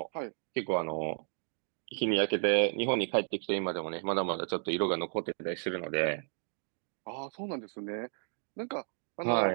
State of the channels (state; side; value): silent; left; digital silence